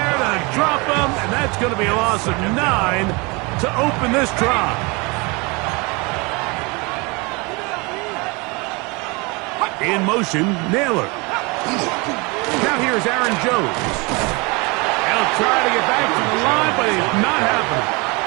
to drop him, and that's going to be a loss of 9 to open this drive. In motion, Naylor. Now here's Aaron Jones. They'll try to get back to the line, but it's not happening.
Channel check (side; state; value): left; quieter; 27.6 dB